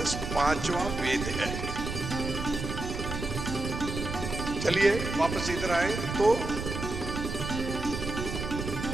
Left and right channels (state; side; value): noise; right; rumble, 5 dB below the sound